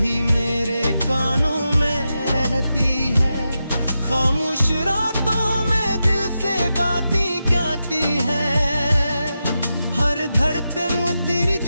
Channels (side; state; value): both; inverted; correlation -0.89